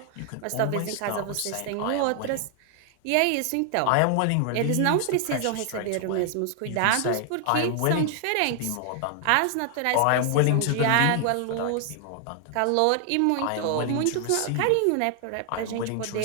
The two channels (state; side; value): different; both; correlation 0.00